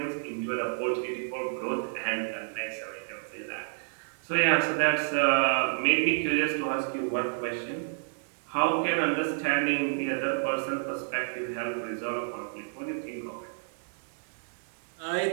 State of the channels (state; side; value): silent; left; digital silence